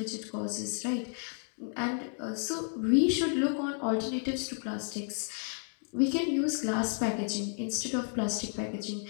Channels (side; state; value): right; silent; 56 dB below the other